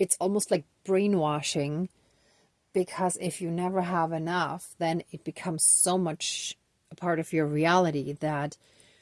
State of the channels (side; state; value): both; identical; correlation 1.00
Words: almost like brainwashing, because if you never have enough, then it becomes so much a part of your reality that